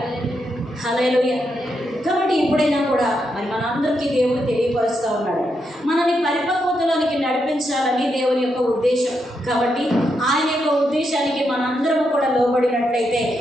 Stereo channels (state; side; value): normal; both; correlation 0.82